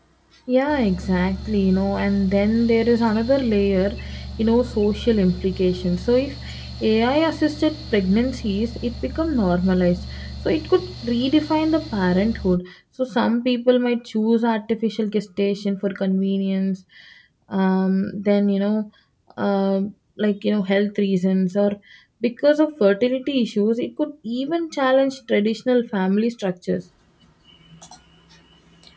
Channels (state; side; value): identical; both; correlation 1.00